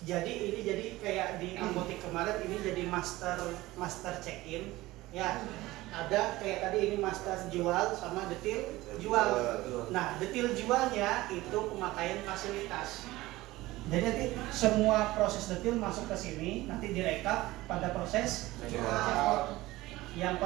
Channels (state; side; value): quieter; left; 18.4 dB